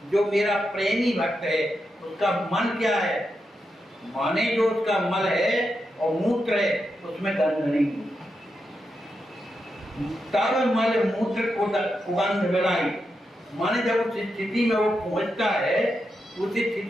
जो मेरा प्रेमी भक्त है उसका मन क्या है, माने जो उसका मल है और मूत्र है उसमें गंध नहीं। तब मल मूत्र को सुगंध बिड़ाई, माने जब उस स्थिति में वो पहुंचता है, उस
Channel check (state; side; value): normal; both; correlation 0.86